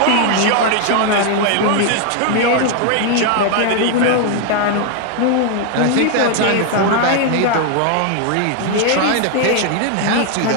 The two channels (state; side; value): different; both; correlation 0.00